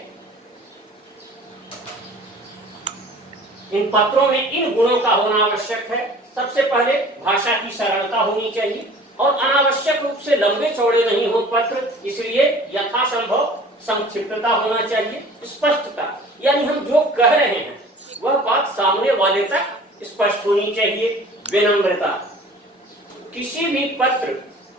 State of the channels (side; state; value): both; normal; correlation 0.46